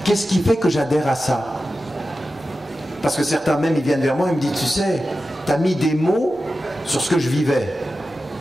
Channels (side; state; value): both; normal; correlation 0.93